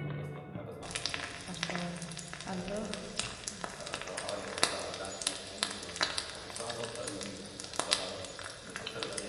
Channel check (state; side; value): identical; both; correlation 1.00